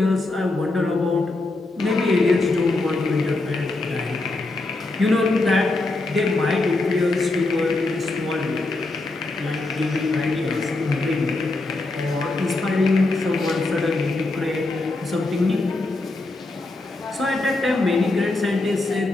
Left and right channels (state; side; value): quieter; right; 3.1 dB